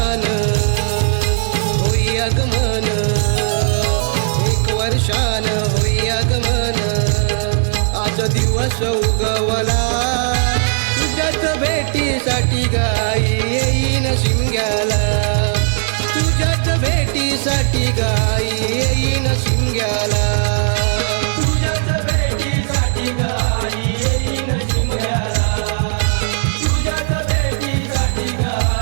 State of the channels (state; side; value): silent; left; 68 dB below the other